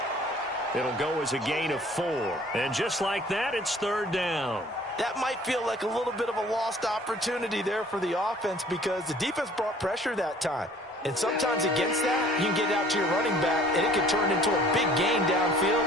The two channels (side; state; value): both; normal; correlation 0.53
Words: It'll go as a gain of 4. And just like that, it's third down. That might feel like a little bit of a lost opportunity there for the offense because the defense brought pressure that time. And sometimes against that, you can get out to your running back, and it can turn into a big gain downfield.